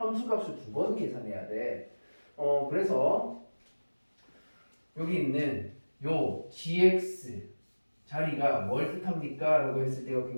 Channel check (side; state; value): both; inverted; correlation -1.00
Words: 두 번 계산해야 돼. 그래서 여기 있는 요 gx 자리가 뭘 뜻합니까? 라고 했을 때가